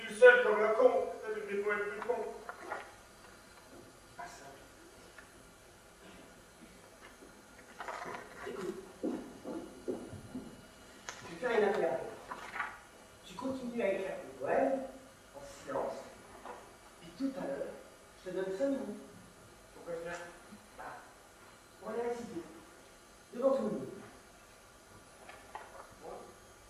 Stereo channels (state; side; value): identical; both; correlation 1.00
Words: tout seul comme un con, avec des poètes plus cons. Pas ça. Écoute. Je vais faire une affaire. Tu continues à écrire tes poèmes, en silence. Puis tout à l'heure, je te donne 5 minutes. Pourquoi faire? On va les réciter. Devant tout le monde.